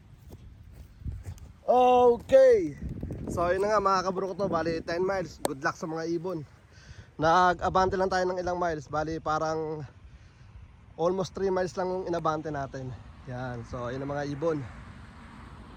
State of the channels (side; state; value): both; identical; correlation 1.00